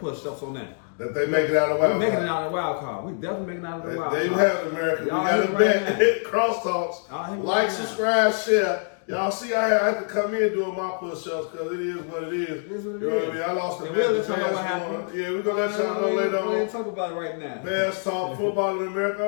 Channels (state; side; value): silent; right; 58 dB below the other